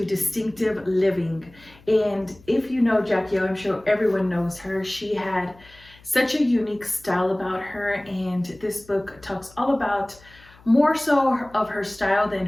distinctive living. And if you know Jackie O, I'm sure everyone knows her. She had such a unique style about her, and this book talks all about more so of her style than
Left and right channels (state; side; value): noise; left; hum, 25 dB below the sound